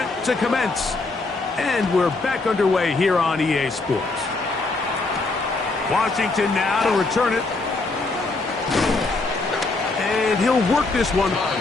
to commence. And we're back underway here on EA Sports. Washington now to return it. And he'll work this one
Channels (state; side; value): quieter; right; 3.4 dB